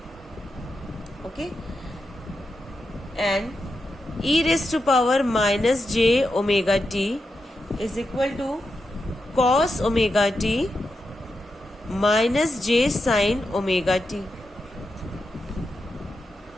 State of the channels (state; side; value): normal; both; correlation 0.87